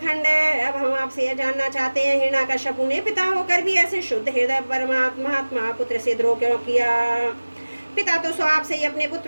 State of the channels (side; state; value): both; inverted; correlation -1.00